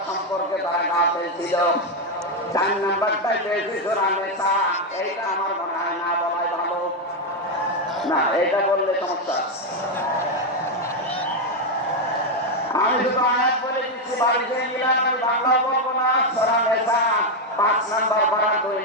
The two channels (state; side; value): normal; both; correlation 0.04